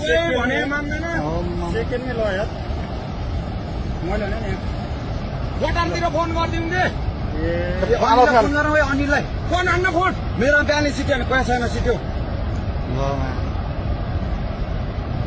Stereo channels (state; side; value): identical; both; correlation 1.00